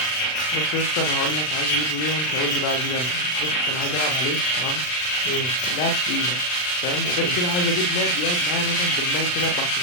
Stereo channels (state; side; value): late; right; 39 ms